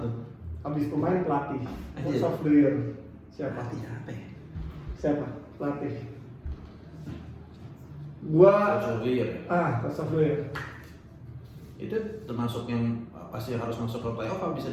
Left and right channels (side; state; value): both; identical; correlation 1.00